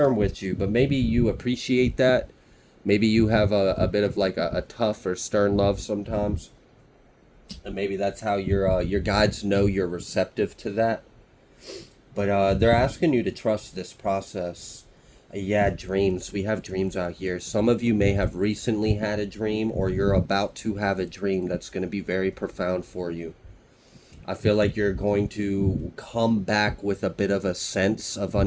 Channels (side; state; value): both; identical; correlation 1.00